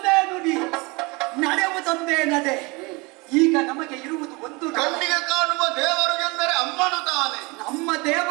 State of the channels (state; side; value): quieter; left; 26.3 dB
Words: ನುಡಿ, ನಡೆಯುವುದೊಂದೇ ನಡೆ. ಈಗ ನಮಗೆ ಇರುವುದು ಒಂದು ಕಣ್ಣಿಗೆ ಕಾಣುವ ದೇವರು ಎಂದರೆ ಅಮ್ಮನು ತಾನೆ. ನಮ್ಮ